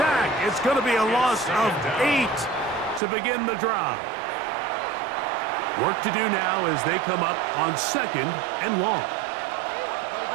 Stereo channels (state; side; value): drops out; left; at 3.0 s